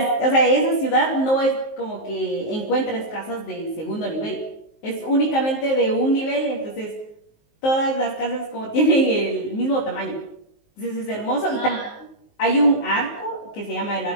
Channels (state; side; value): late; right; 19 ms